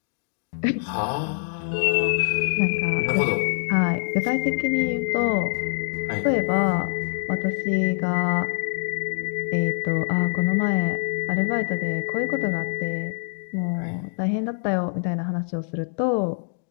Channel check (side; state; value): right; silent; digital silence